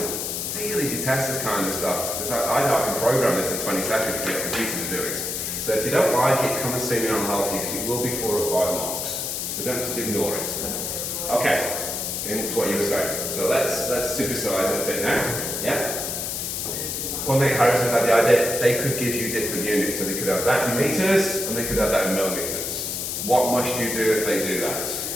really detest this kind of stuff, because I know I can program this in 20 seconds to get a computer to do it. So if you don't like it, come and see me and I'll help you, because it will be 4 or 5 marks. So don't just ignore it. Okay, getting to what you were saying. So let's supersize it a bit now. Yeah? One thing Harrison had the idea, they could give you different units. So they could have that in meters, and they could have that in millimeters. What must you do if they do that?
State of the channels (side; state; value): left; noise; hiss, 3 dB below the sound